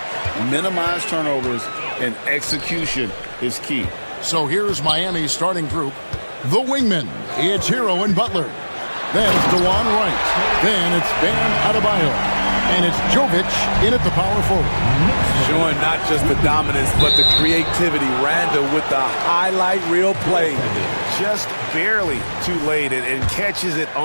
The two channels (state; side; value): inverted; both; correlation -1.00